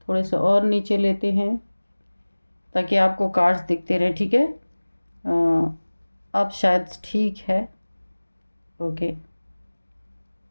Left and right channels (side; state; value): both; inverted; correlation -1.00